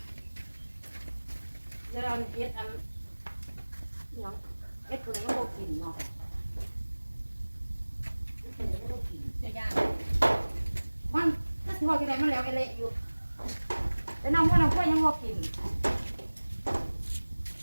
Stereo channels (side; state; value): both; inverted; correlation -1.00